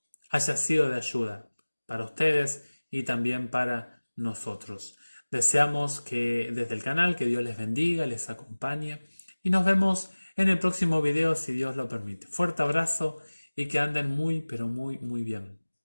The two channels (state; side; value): inverted; both; correlation -1.00